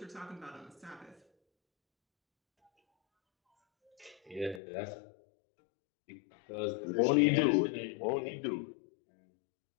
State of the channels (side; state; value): right; drops out; at 4.6 s